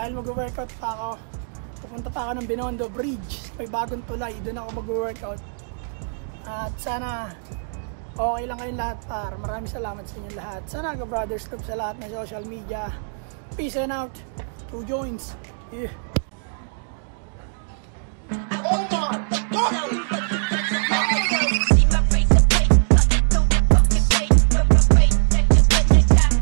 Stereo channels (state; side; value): silent; left; digital silence